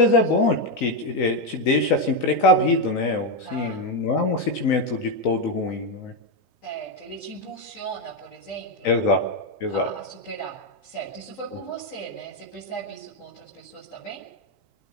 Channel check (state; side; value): late; right; 3.9 ms